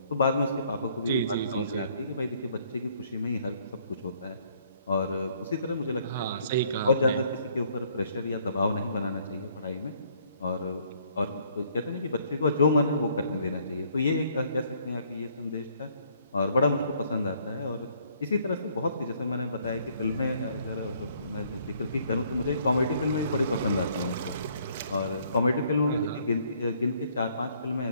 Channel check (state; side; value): inverted; both; correlation -0.64